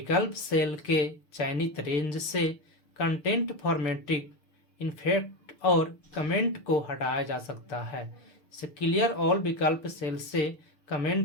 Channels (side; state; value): right; late; 6.6 ms